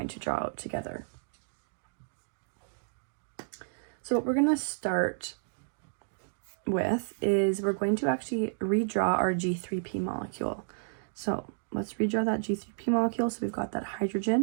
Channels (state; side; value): silent; left; digital silence